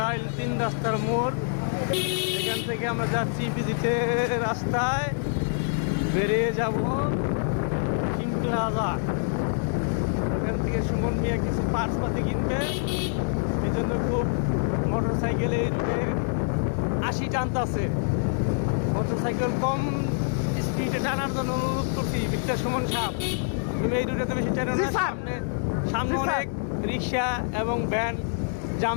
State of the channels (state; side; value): silent; right; digital silence